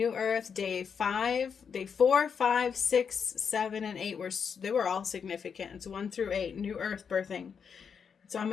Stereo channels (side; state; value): right; quieter; 6.6 dB